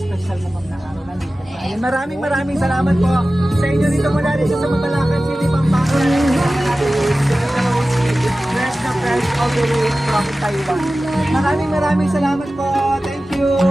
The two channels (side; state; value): both; normal; correlation 0.95